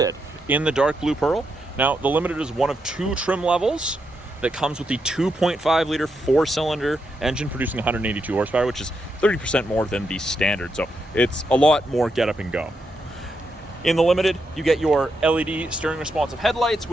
in the dark blue pearl. Now, the Limited is one of two trim levels that comes with the 2.5 liter four-cylinder engine producing 182 horsepower, which is 30% more than the standard. So it's a lot more get up and go. In the Limited, you get your LED steering responsive headlights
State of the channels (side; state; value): both; normal; correlation 0.82